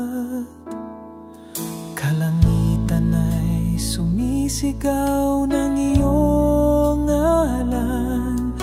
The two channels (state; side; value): identical; both; correlation 1.00